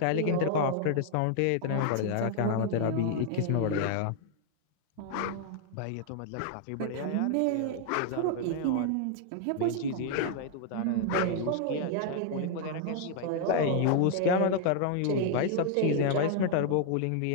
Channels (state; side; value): different; both; correlation 0.00